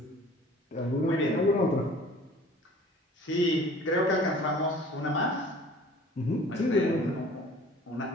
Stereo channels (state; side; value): normal; both; correlation 0.48